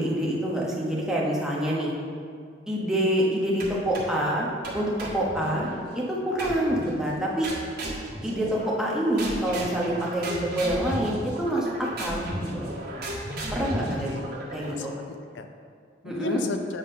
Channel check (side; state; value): both; normal; correlation 0.55